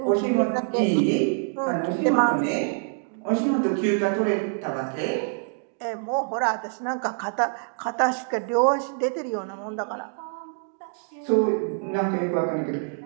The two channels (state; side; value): silent; left; 56 dB below the other